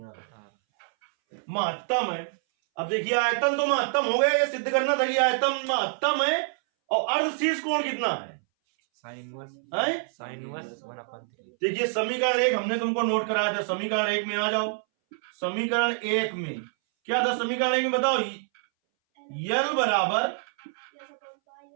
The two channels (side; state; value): left; silent; 60 dB below the other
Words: आ रहा, महत्तम है। अब देखिए आयतन तो महत्तम हो गया, ये सिद्ध करना था कि आयतन महत्तम है। और अर्धशीर्ष कोण कितना है, sin 1/3। देखिए समीकरण 1 हमने तुमको नोट कराया था, समीकरण 1 में आ जाओ। समीकरण 1 में क्या था, समीकरण 1 में बताओ, यल बराबर